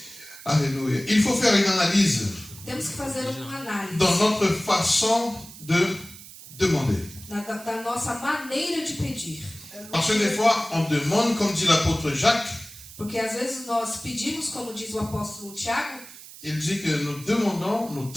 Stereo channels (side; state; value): right; noise; hiss, 17 dB below the sound